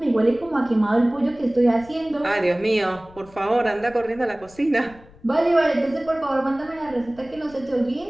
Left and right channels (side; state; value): left; noise; rumble, 23 dB below the sound